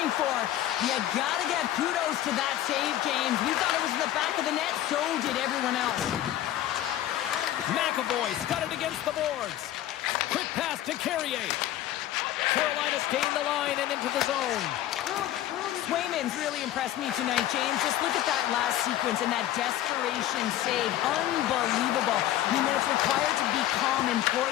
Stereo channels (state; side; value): quieter; right; 13.1 dB